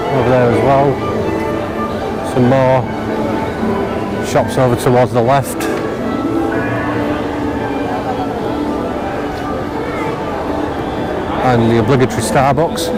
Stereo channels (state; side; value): identical; both; correlation 1.00